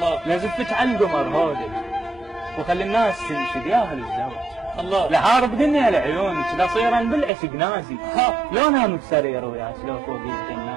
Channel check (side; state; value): left; drops out; at 7.3 s